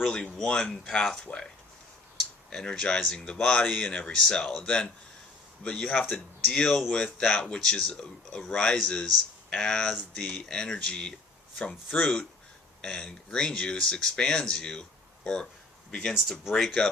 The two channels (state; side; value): quieter; right; 3.4 dB